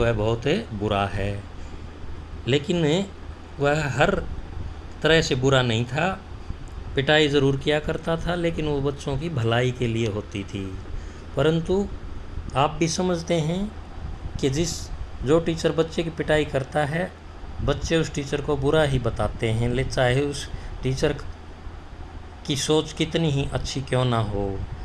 बहुत बुरा है। लेकिन वह हर तरह से बुरा नहीं था, पिटाई ज़रूर किया करता था, लेकिन वो बच्चों की भलाई के लिए होती थी। परंतु आप भी समझते हैं कि जो टीचर बच्चे की पिटाई करता है, बच्चे उस टीचर को बुरा ही बताते हैं, चाहे उस टीचर की सोच कितनी ही अच्छी क्यों ना हो।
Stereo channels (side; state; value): both; identical; correlation 1.00